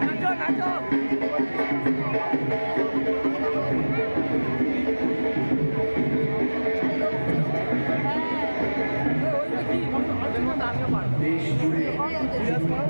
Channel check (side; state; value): both; inverted; correlation -1.00